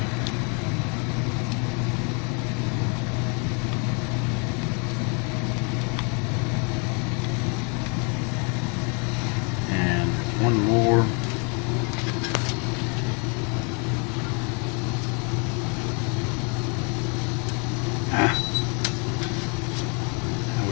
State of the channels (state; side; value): quieter; right; 35.1 dB